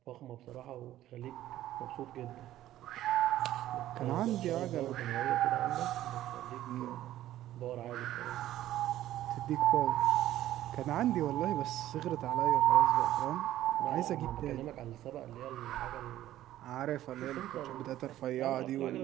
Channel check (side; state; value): left; quieter; 13.6 dB